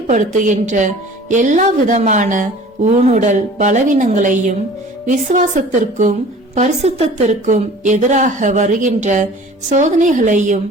எல்லா விதமான ஊனுடல் பலவீனங்களையும் விசுவாசத்திற்கும் பரிசுத்தத்திற்கும் எதிராக வருகின்ற சோதனைகளையும்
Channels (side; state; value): both; normal; correlation 0.45